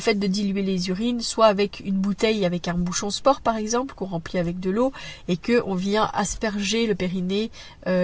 de diluer les urines, soit avec une bouteille avec un bouchon sport par exemple, qu'on remplit avec de l'eau et que on vient asperger le périnée,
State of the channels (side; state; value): both; identical; correlation 1.00